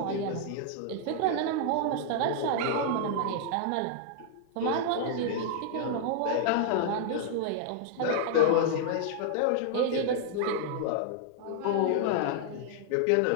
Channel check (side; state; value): both; different; correlation -0.01